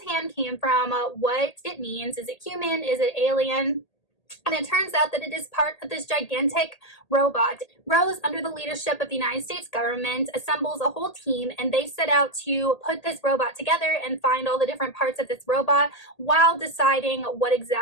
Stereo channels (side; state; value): right; late; 1.8 ms